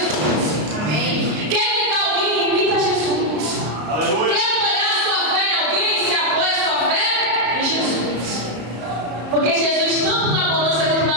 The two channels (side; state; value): left; late; 33 ms